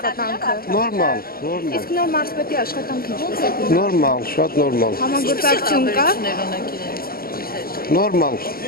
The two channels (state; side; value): late; right; 0.43 ms